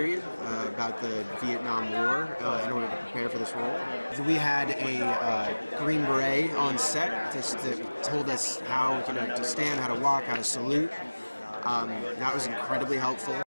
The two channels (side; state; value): both; inverted; correlation -1.00